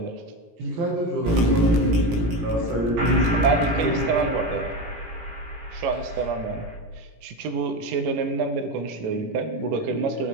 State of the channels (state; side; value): late; left; 17 ms